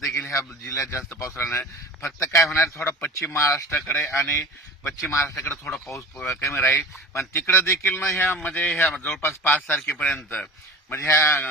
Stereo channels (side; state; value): both; normal; correlation 0.37